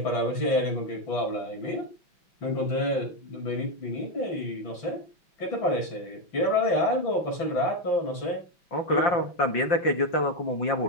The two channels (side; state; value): right; late; 5.7 ms